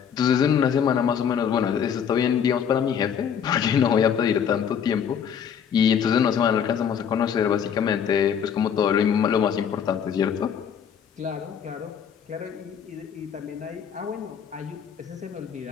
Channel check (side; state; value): right; quieter; 8.0 dB